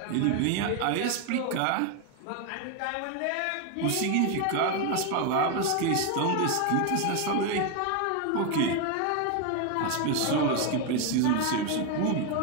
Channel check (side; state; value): both; different; correlation 0.01